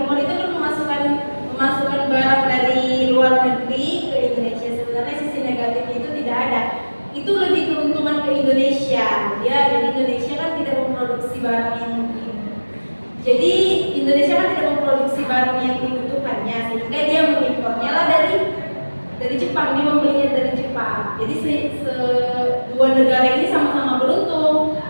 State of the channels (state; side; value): inverted; both; correlation -1.00